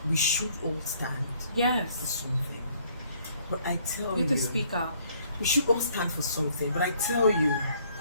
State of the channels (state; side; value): inverted; both; correlation -0.63